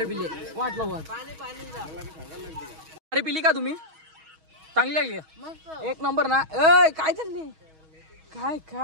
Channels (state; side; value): late; left; 6.3 ms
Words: पिले. वाटला वाट अरे पिली का तुम्ही. चांगली लागली का. एक नंबर ना. ए काय चालली. काय